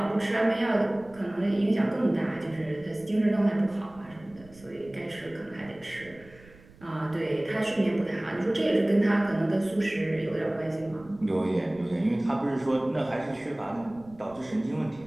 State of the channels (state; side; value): noise; right; rumble, 24 dB below the sound